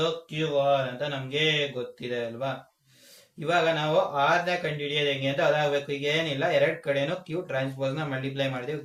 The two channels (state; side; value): identical; both; correlation 1.00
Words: Q R ಅಂತ ನಮ್ಗೆ ಗೊತ್ತಿದೆ ಅಲ್ವಾ? ಇವಾಗ ನಾವು ಆರ್ ನ ಕಂಡುಹಿಡಿಯೋದು ಹೆಂಗೆ ಅಂತ ಅದಾಗಬೇಕು. ಈಗ ಏನಿಲ್ಲ, ಎರಡ್ ಕಡೆನು ಕ್ಯೂ ಟ್ರಾನ್ಸ್ಪೋಸ್ ನ ಮಲ್ಟಿಪ್ಲೈ ಮಾಡ್ತೀವಿ.